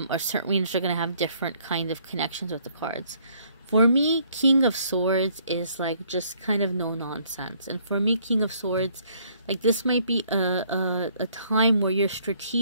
or certain readers are going to have different kind of connections with the cards. For me, King of Swords is like just kind of no nonsense. And for me, King of Swords, like this might be a time where you're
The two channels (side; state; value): both; inverted; correlation -0.64